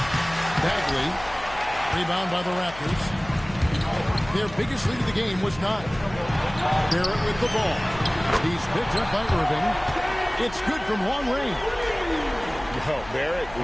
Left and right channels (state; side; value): noise; left; hum, 17 dB below the sound